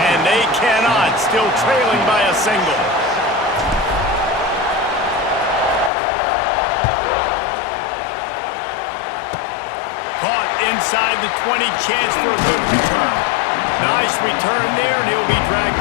and they cannot. Still trailing by a single. Caught inside the 20, chance for a good return. Nice return there, and he'll be dragged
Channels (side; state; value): right; drops out; at 5.9 s